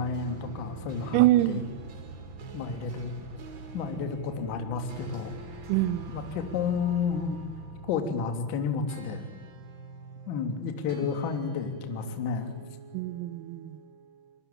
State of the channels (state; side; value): late; left; 6.0 ms